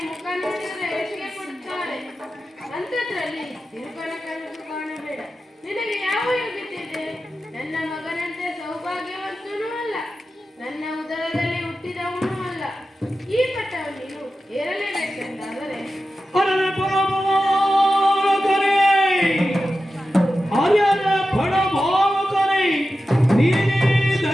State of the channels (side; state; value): both; normal; correlation 0.92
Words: ಮುಖ ನೋಡಿದರೆ ಎಸಿಗೆ ಕೊಡುತ್ತಾಳೆ. ಅಂಥದ್ರಲ್ಲಿ ತಿರುಪನ ಕನಸು ಕಾಣಬೇಡ. ನಿನಗೆ ಯಾವ ಯೋಗ್ಯತೆ ಇದೆ? ನನ್ನ ಮಗನಂತೆ ಸೌಭಾಗ್ಯವಂತನೂ ಅಲ್ಲ, ನನ್ನ ಉದರದಲ್ಲಿ ಹುಟ್ಟಿದವನೂ ಅಲ್ಲ. ಈ ಪಟ್ಟವನ್ನು ನೀನು ಏರಲೇಬೇಕೆಂದಾದರೆ ಅರಳೆ ಪರಮಾವಕರೇ, ಅರಳೆ ಪರಮಾವಕರೇ, ನೀನೇ